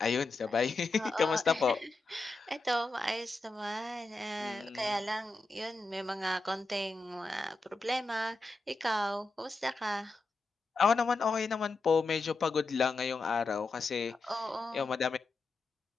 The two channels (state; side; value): quieter; right; 3.4 dB